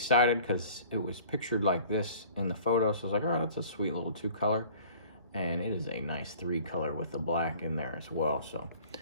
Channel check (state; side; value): inverted; both; correlation -0.49